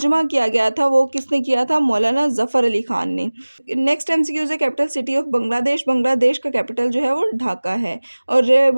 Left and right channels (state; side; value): inverted; both; correlation -1.00